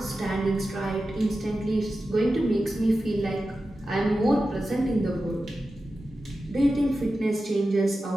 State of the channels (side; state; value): both; normal; correlation 0.93